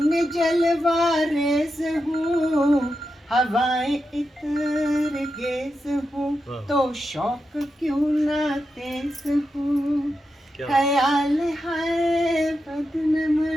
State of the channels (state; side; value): normal; both; correlation 0.88